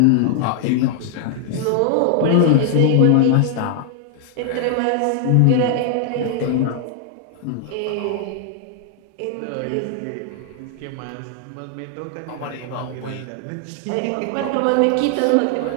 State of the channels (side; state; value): both; different; correlation 0.00